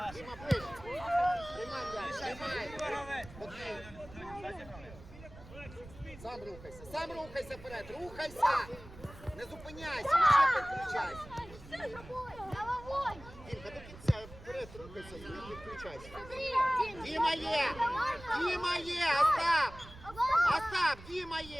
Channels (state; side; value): noise; right; rumble, 17 dB below the sound